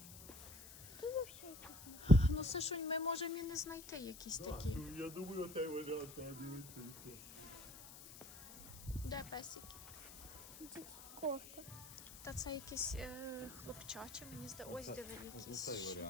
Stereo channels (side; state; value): left; noise; hiss, 15 dB below the sound